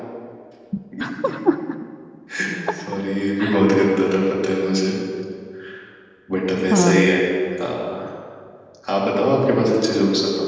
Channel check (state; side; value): identical; both; correlation 1.00